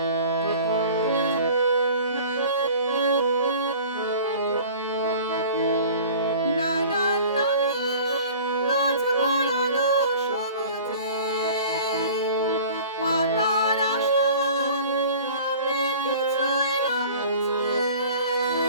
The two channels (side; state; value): both; inverted; correlation -0.44